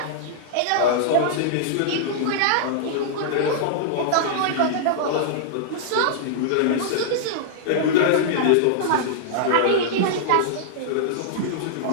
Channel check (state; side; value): different; both; correlation -0.01